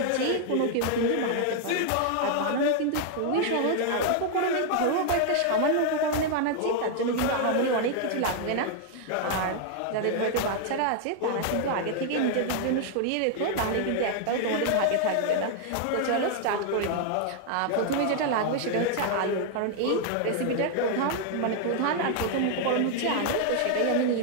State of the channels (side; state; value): both; different; correlation 0.00